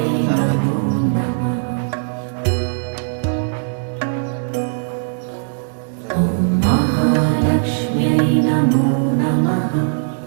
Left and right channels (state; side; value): silent; left; digital silence